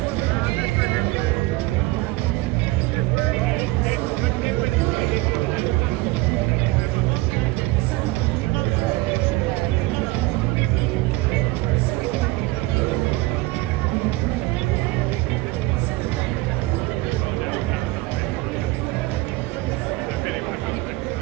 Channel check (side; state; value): left; quieter; 20.3 dB